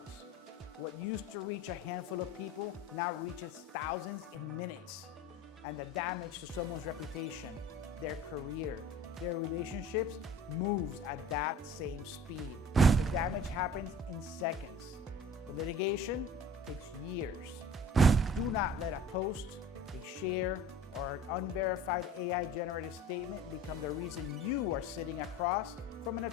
What used to reach a handful of people now reaches thousands in minutes. And the damage to someone's reputation, their career, their relationships moves at that same speed. The damage happens in seconds. The litigation takes years. Do not let a post, a share, or an unverified AI-generated statement become the reason you are sitting across from an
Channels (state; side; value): normal; both; correlation 0.44